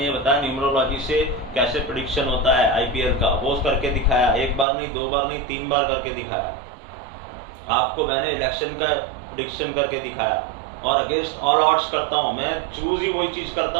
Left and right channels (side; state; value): left; drops out; at 4.7 s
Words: ये बताया न्यूमरोलॉजी से कैसे प्रेडिक्शन होता है IPL का, वो करके दिखाया, 1 बार नहीं 2 बार नहीं 3 बार करके दिखाया। आपको मैंने इलेक्शन का प्रेडिक्शन करके दिखाया, और अगेंस्ट ऑल ऑड्स करता हूं। मैं चूज ही वही चीज करता